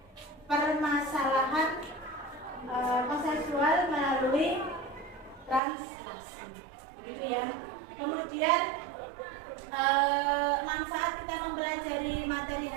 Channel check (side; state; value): left; drops out; at 5.6 s